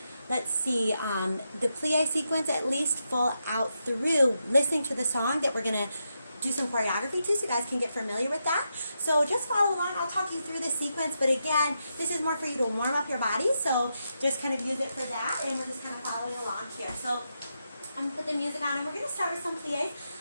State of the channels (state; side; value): inverted; both; correlation -0.85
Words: Let's see, the plie sequence at least full out through, listening to the song that we're going to do some choreography to, so you guys can get familiar with that. So just follow along. I'll talk you through the sequence, but again, this is more for you to warm up your body, so just kind of use it for that, and we're just kind of following along here. So I'm going to put the music on, and we're going to start with some plies.